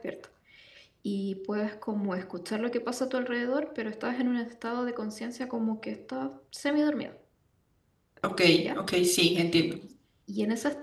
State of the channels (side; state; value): both; identical; correlation 1.00